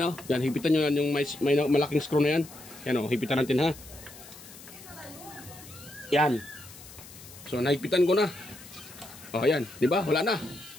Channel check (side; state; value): left; noise; hiss, 18 dB below the sound